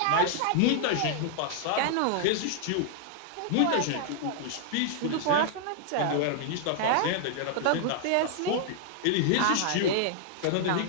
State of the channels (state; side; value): different; both; correlation -0.01